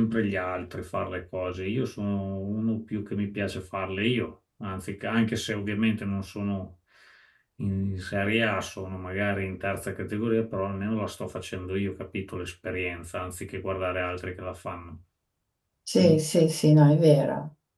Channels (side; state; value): both; identical; correlation 1.00